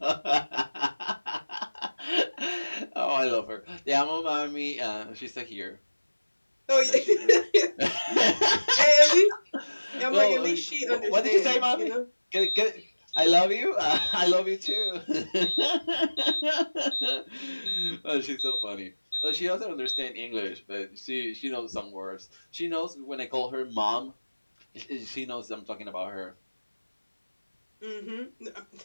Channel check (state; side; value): inverted; both; correlation -1.00